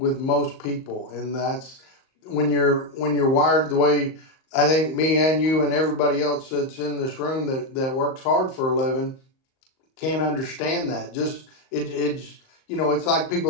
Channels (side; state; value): right; late; 38 ms